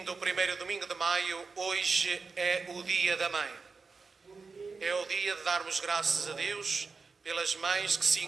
o 1º domingo de maio, hoje é o Dia da Mãe. É o dia de darmos graças a Deus pelas mães que se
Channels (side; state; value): left; quieter; 4.6 dB